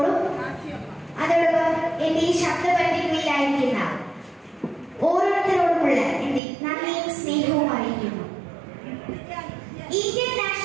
അതോടൊപ്പം എന്റെ ഈ ശബ്ദപരിധികളിലായിരിക്കുന്ന ഓരോരുത്തരോടുമുള്ള എന്റെ നന്ദിയും സ്നേഹവും അറിയിക്കുന്നു. ഇന്ത്യൻ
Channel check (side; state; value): left; drops out; at 6.4 s